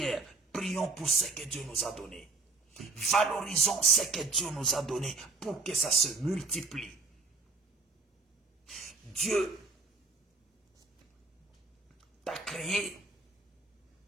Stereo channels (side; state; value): left; quieter; 3.7 dB